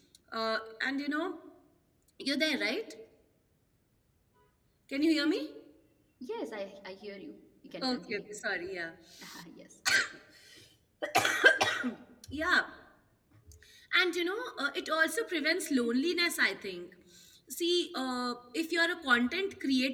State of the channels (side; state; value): both; identical; correlation 1.00